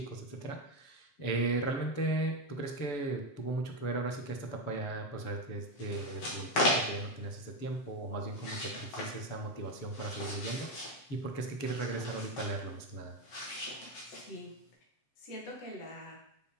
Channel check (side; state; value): right; late; 7.5 ms